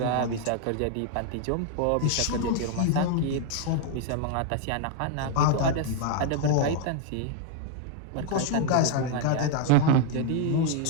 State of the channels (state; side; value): different; both; correlation 0.00